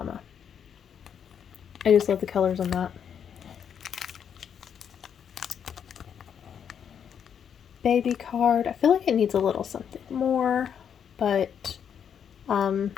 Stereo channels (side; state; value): right; quieter; 8.0 dB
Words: I just love the colors on that. Baby card. I feel like it needs a little something more, but